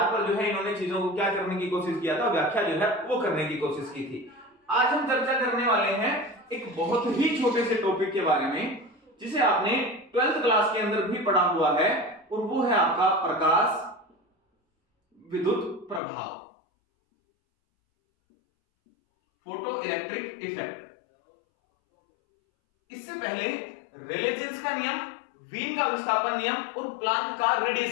पर जो है इन्होंने चीजों को क्या करने की कोशिश किया था, व्याख्या जो है वो करने की कोशिश की थी। आज हम चर्चा करने वाले हैं एक बहुत ही छोटे से टॉपिक के बारे में, जिसे आपने 12th क्लास के अंदर भी पढ़ा हुआ है, और वो है आपका प्रकाश विद्युत प्रभाव, फोटो इलेक्ट्रिक इफेक्ट। इससे पहले रेले जीन्स का नियम, वीन का विस्थापन नियम और प्लांक का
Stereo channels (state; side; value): drops out; right; at 16.0 s